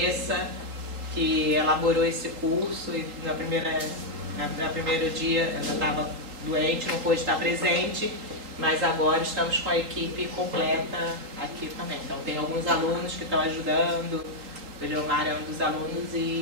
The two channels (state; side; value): late; left; 3.8 ms